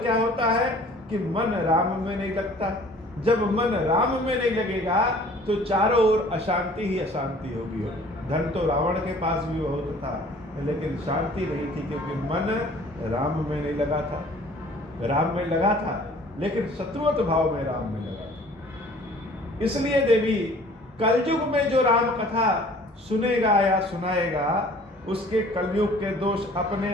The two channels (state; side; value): normal; both; correlation 0.51